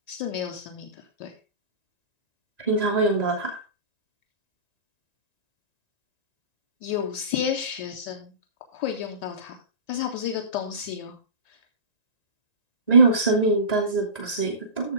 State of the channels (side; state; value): right; late; 1.9 ms